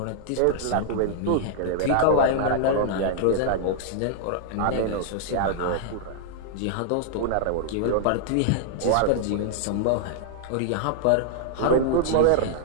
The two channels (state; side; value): different; both; correlation -0.01